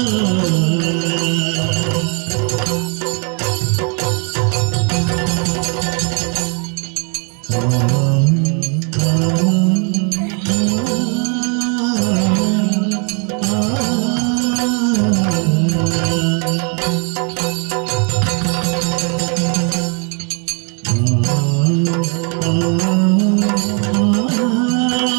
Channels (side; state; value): left; quieter; 37.6 dB